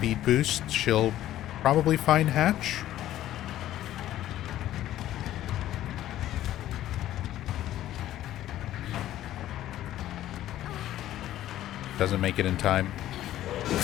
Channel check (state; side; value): quieter; right; 13.3 dB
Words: boost. She'll probably find Hatch. Doesn't make it in time.